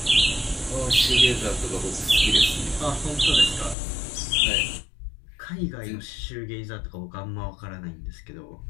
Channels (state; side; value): drops out; right; at 3.8 s